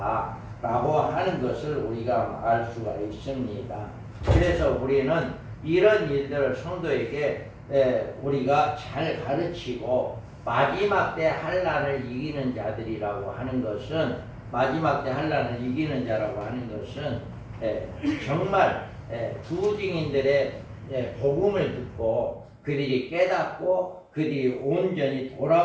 라고 하는 것을 우리가 알 수가 있습니다. 그래서 우리는 이런 일들을 성도에게 우리가 잘 가르치고 마지막 때 환난을 이기는 자들이라고 하는 것은, 마지막 때 환난을 이기는 자라고 하는 것은 정말 부증인들의 복음을 듣고 그들이 깨닫고 그들이 온전히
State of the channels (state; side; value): identical; both; correlation 1.00